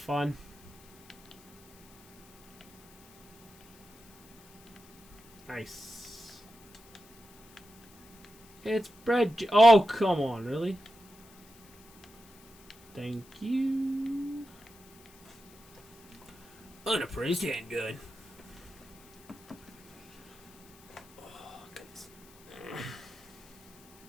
Nice. It's bread. Oh, come on, really? Thank you. Unappraised handgun. Oh, goodness.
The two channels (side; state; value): left; noise; hiss, 26 dB below the sound